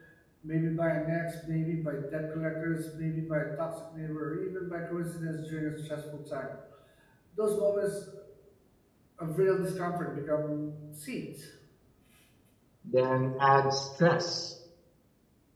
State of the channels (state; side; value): identical; both; correlation 1.00